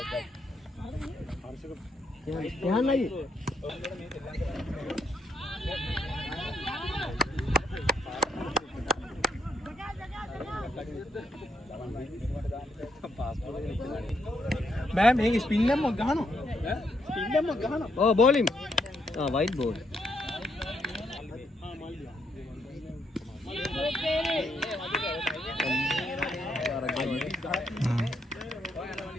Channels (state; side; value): normal; both; correlation 0.76